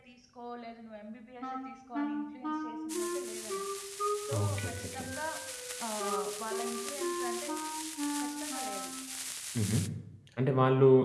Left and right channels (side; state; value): both; identical; correlation 1.00